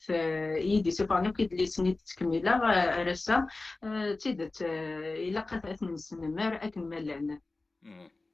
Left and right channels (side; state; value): right; quieter; 3.3 dB